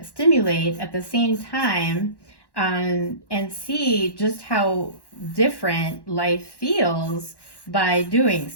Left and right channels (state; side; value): late; right; 1.1 ms